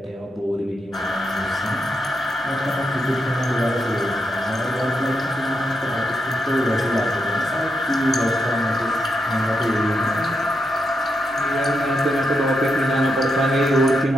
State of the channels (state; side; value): normal; both; correlation 0.82